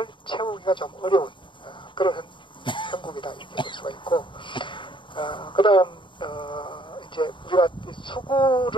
채우기가 좀 어려운 그런 형국이다 이렇게 볼 수가 있고 그 다음 이제 우리가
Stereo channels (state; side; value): late; right; 0.23 ms